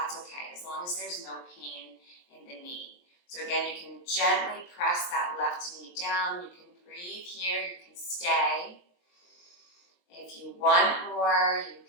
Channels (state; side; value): late; right; 23 ms